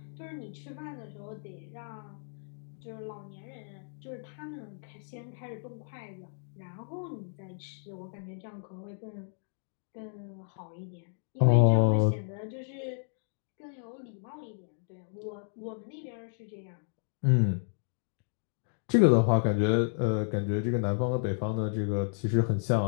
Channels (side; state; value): right; silent; digital silence